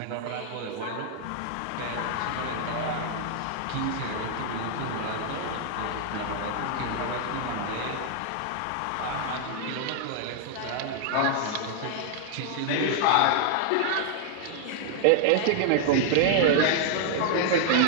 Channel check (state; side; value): different; both; correlation -0.01